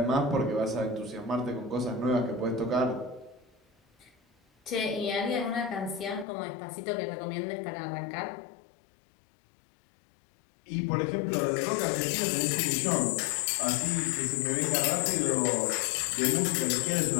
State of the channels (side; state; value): right; drops out; at 6.2 s